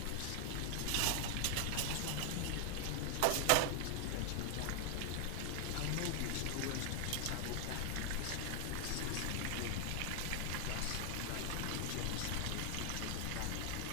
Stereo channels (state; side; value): different; both; correlation 0.00